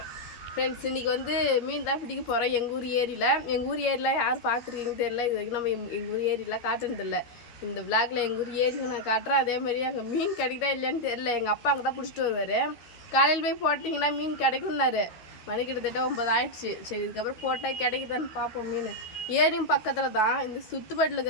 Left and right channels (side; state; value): right; late; 12 ms